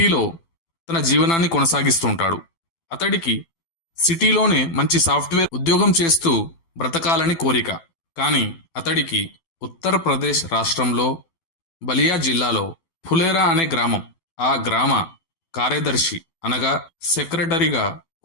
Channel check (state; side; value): late; right; 12 ms